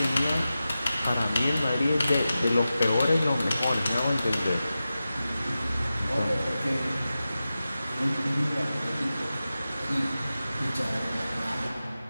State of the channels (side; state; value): both; inverted; correlation -0.94